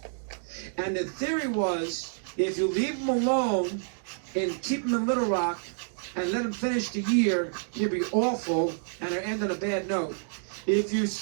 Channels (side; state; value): left; silent; digital silence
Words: And the theory was, if you leave him alone and keep him in Little Rock and let him finish the year, he'll be awful and it'll end on a bad note. If you